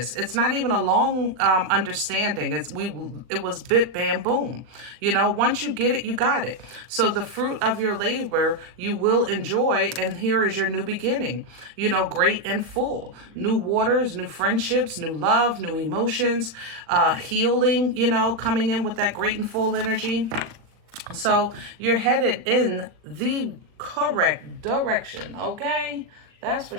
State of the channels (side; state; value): left; late; 40 ms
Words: It's not even a long understanding. It was bit, bam, boom, you know. Once you get it, you got it. So the fruit of your labor you will enjoy, and here is your new beginning, you know, great and full. New waters, new friendships, new love, new emotions, healing, you know, coming in with that great and full energy. So you're headed in the correct direction, okay? That's for